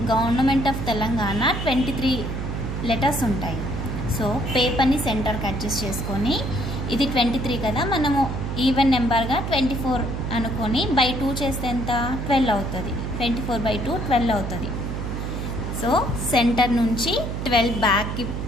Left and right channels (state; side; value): noise; right; hum, 4 dB below the sound